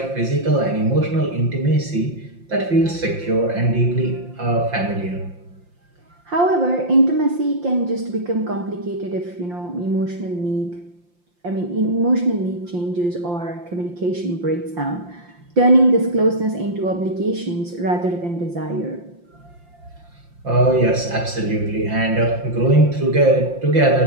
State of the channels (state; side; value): late; left; 5.7 ms